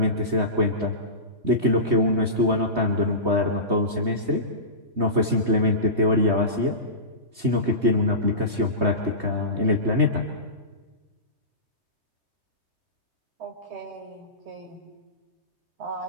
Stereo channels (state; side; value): late; left; 3.2 ms